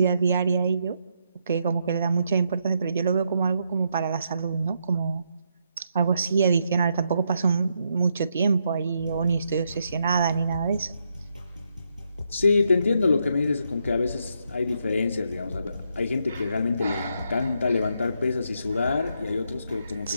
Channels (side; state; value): both; inverted; correlation -0.78